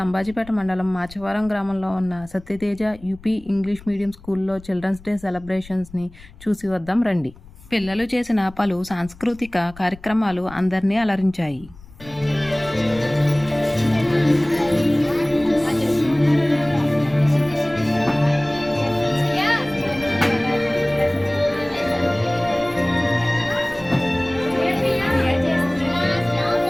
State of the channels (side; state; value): left; noise; rumble, 21 dB below the sound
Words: అంబాజీపేట మండలం మాచవరం గ్రామంలో ఉన్న సత్యతేజ యూపీ ఇంగ్లీష్ మీడియం స్కూల్లో చిల్డ్రన్స్ డే సెలబ్రేషన్స్ని చూసి వద్దాం రండి. పిల్లలు చేసిన పలు సాంస్కృతిక కార్యక్రమాలు అందరినీ అలరించాయి.